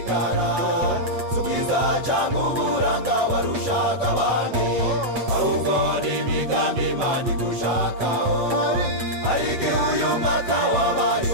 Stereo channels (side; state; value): left; late; 8.5 ms